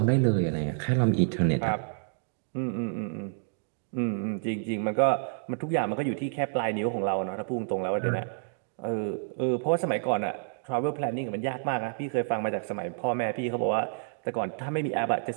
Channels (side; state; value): left; silent; digital silence